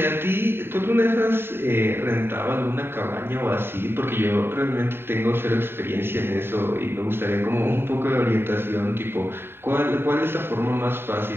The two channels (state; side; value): late; left; 0.11 ms